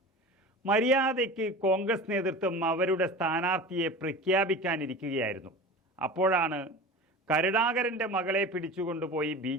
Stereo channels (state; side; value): normal; both; correlation 0.34